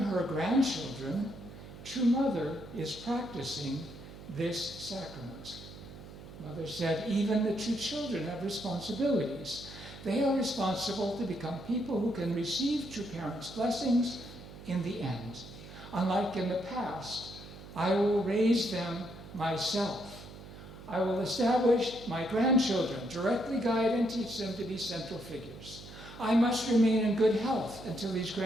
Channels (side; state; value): right; noise; hum, 15 dB below the sound